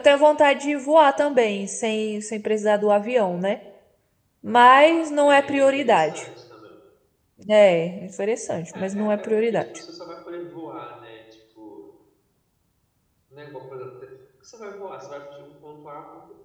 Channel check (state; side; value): identical; both; correlation 1.00